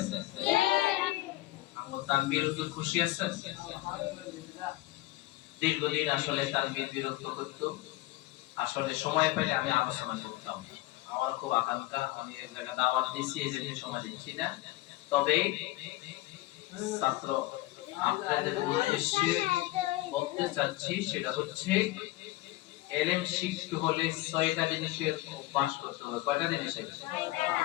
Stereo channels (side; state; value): right; quieter; 18.4 dB